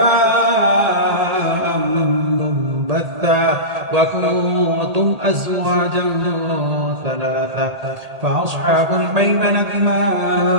منبثا وكنتم أزواجا ثلاثة فأصحاب الميمنة ما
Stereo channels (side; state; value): left; late; 1.8 ms